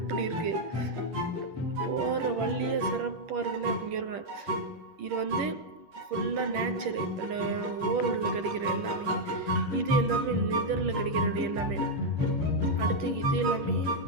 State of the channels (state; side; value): late; left; 10 ms